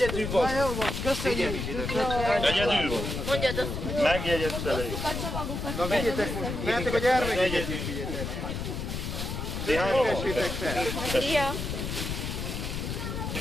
vagy. Egyedül van. Mondjad azt! Megjegyezte le. Na vigyétek most, mehetek a gyermeket is vigyétek. Ti hányan vagytok? Tessétek fel. Szia!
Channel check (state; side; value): noise; left; rumble, 4 dB below the sound